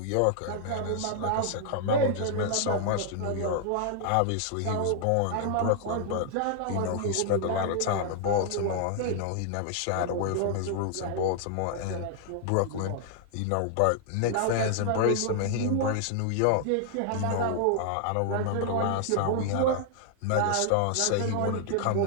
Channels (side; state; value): both; different; correlation 0.00